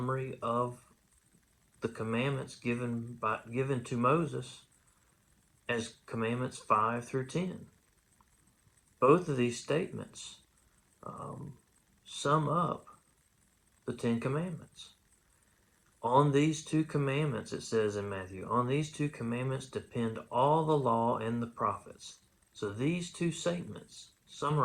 of the commandments given to Moses as commandments 5 through 10. Both of these statements sum up the Ten Commandments. On these two commandments, it says in Matthew, on these two commandments depend all the law and the prophets. So these two statements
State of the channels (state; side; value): identical; both; correlation 1.00